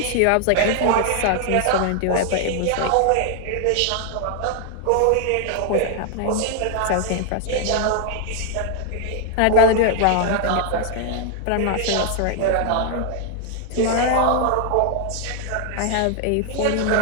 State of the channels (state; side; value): different; both; correlation 0.00